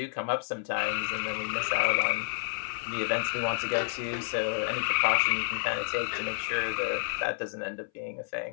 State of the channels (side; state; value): right; silent; 58 dB below the other